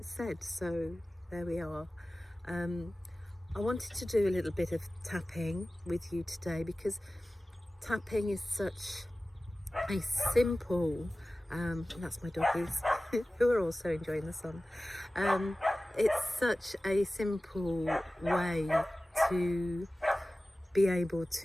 said, so there we are. I wanted to do a little bit of tapping with you today, because tapping is such a simple, that's my doggies who are also enjoying the sun. It's such a simple way to be able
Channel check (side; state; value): both; normal; correlation 0.97